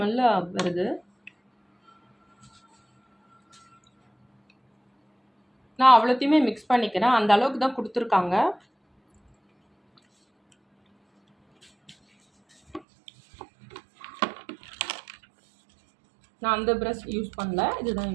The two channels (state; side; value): drops out; left; at 12.8 s